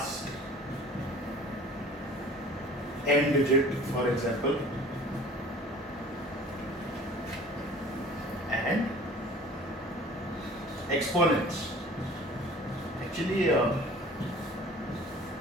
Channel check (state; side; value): normal; both; correlation 0.46